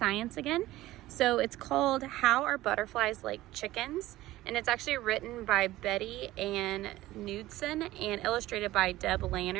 again. So it's called How Are Butterflies Like Chickens? And it's actually written by Betty Ann Knudsen and illustrated by Deb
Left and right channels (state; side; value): quieter; left; 16.5 dB